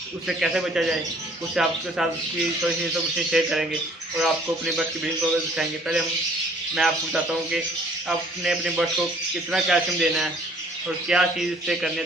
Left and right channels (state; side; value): normal; both; correlation 0.57